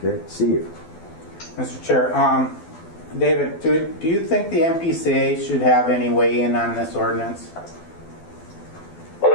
Okay, Steve. Mr. Chair, David, do you think the MPCA should have any weigh in on this ordinance? Well,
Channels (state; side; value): late; right; 12 ms